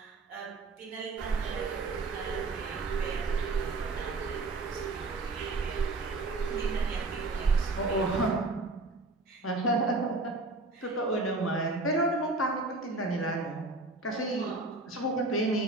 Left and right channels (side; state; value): left; quieter; 3.2 dB